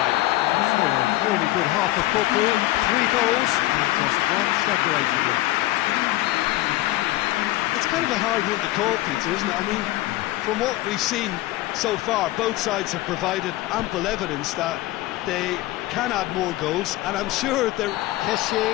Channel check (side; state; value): right; quieter; 17.2 dB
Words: So a really good half of football. 3 goals and just one separating them. It's kind of a hard one to call, Peter, isn't it? I mean, from what we've seen so far, both sides have provided ample evidence that they can add more goals, and I'm sure they're... Kessié